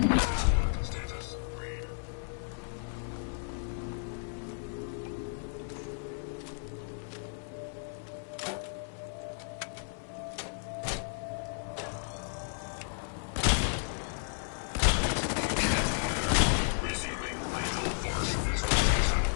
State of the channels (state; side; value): silent; right; 56 dB below the other